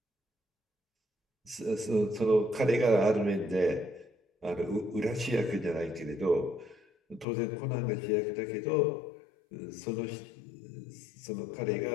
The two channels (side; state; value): right; drops out; at 7.2 s